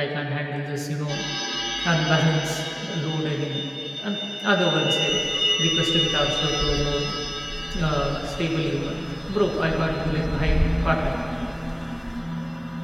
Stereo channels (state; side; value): identical; both; correlation 1.00